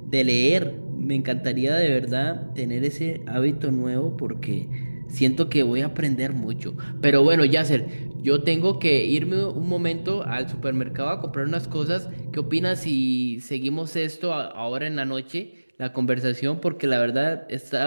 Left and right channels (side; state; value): both; inverted; correlation -1.00